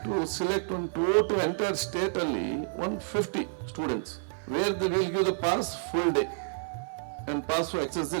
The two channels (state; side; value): silent; left; 58 dB below the other